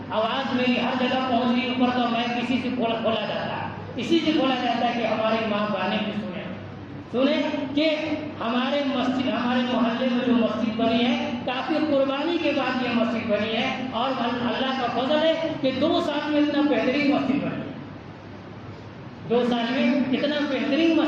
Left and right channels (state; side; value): identical; both; correlation 1.00